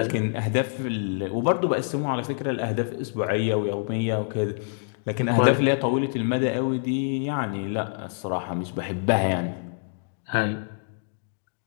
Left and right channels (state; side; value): silent; right; digital silence